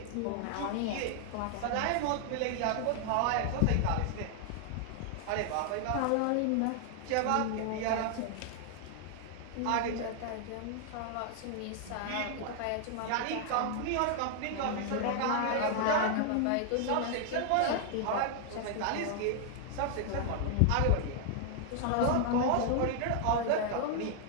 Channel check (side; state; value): both; different; correlation 0.00